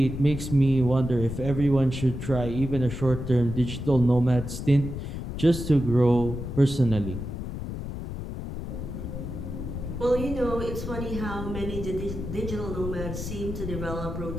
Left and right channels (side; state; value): left; noise; rumble, 6 dB below the sound